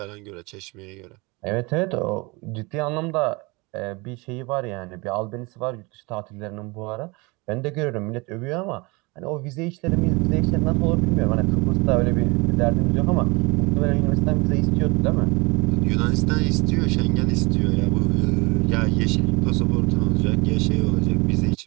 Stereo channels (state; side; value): quieter; left; 26.1 dB